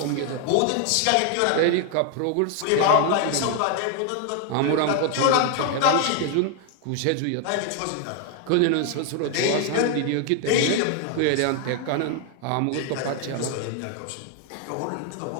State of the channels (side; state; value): both; different; correlation 0.00